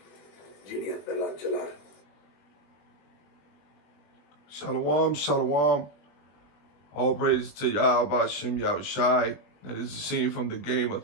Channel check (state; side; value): late; right; 20 ms